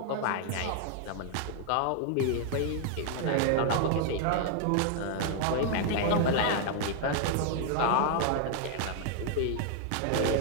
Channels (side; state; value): both; different; correlation 0.00